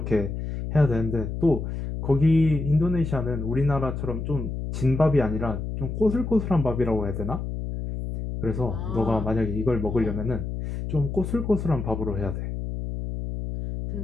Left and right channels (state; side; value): noise; left; hum, 5 dB below the sound